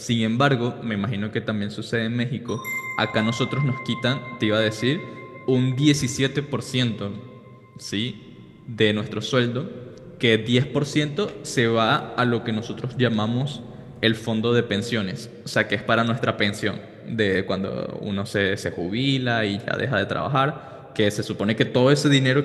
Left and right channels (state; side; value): identical; both; correlation 1.00